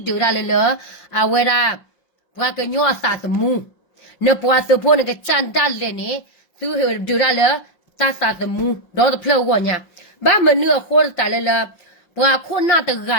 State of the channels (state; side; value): late; right; 5.6 ms